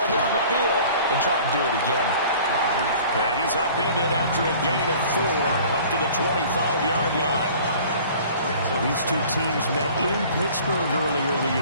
down the field and try and do it again. And he's upended after a gain of 4 up to the 25-yard line. So these two teams met in Pittsburgh earlier in the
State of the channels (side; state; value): both; inverted; correlation -0.48